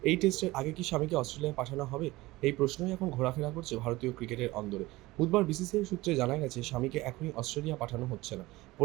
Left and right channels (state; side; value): quieter; left; 19.6 dB